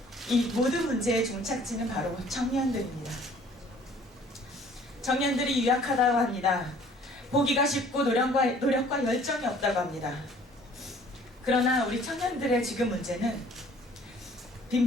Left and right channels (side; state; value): both; normal; correlation 0.54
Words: 이 모든 문제의 종착지는 바로 청년들입니다. 청년들이 유약하다고 합니다. 보기가 쉽고 노력과 열정이 없다고 합니다. 그러나 우리 청년들의 지금 문제는